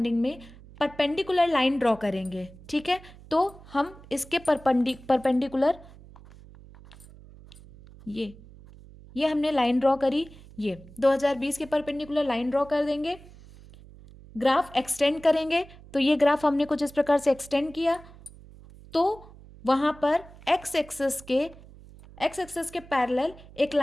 में परपेंडिकुलर लाइन ड्रॉ करेंगे, ठीक है। तो हम इसके परपेंडिकुलर ये हमने लाइन ड्रॉ करी, ये 2020 के परपेंडिकुलर लाइन ड्रॉ कर देंगे। ग्राफ एक्सटेंड करेंगे, तो ये ग्राफ हमने कुछ इस प्रकार से एक्सटेंड किया, तो वहाँ पर एक्स एक्सिस के पैरेलल एक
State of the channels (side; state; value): right; noise; hum, 21 dB below the sound